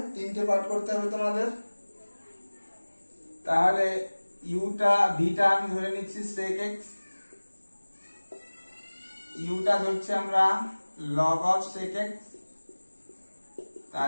তিনটে পার্ট করতে হবে তোমাদের। তাহলে ইউটা ভিটা আমি ধরে নিচ্ছি sec x, ইউটা ধরছি আমরা log of sec x,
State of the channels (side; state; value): both; inverted; correlation -1.00